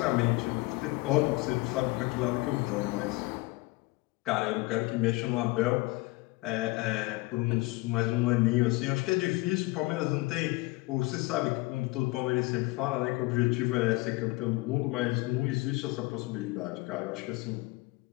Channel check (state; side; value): quieter; right; 22.2 dB